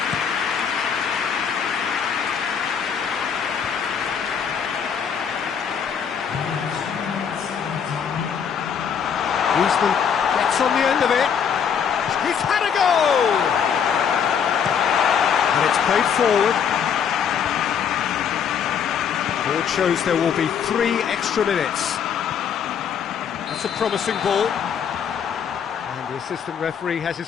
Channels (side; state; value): right; quieter; 7.5 dB